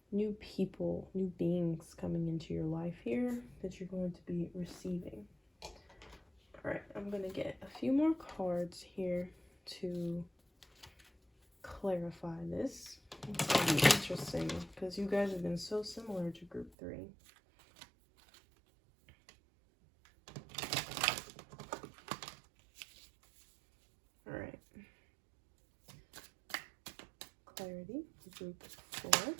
new people, new beings coming into your life here that you're going to be receiving. All right, I'm going to get a few more cards here to clarify this. It's going to be interesting because you guys have been so similar to group 3. All right. Clarity, group 4.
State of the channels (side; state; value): left; drops out; at 16.7 s